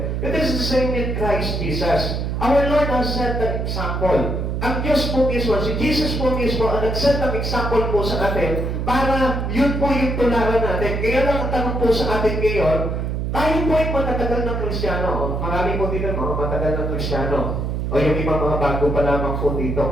it is the same with Christ Jesus. Our Lord has set the example. Ang Diyos po mismo, si Jesus po mismo, ang nag-set ng example po sa atin para yun po yung tularan natin. Kaya lang ang tanong po sa atin ngayon, tayo po ay matatagal ng Kristiyano. Marami po dito mga matagal ng Kristiyano. O yung ibang mga bago pa lamang po dito.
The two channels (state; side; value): noise; right; hum, 1 dB below the sound